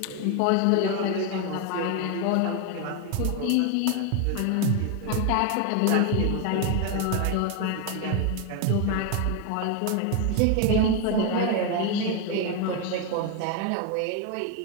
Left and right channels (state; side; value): different; both; correlation 0.01